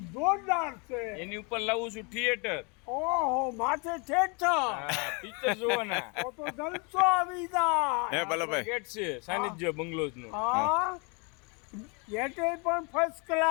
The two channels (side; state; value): right; quieter; 32.4 dB